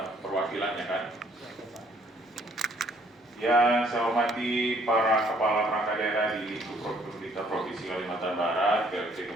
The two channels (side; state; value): both; normal; correlation 0.63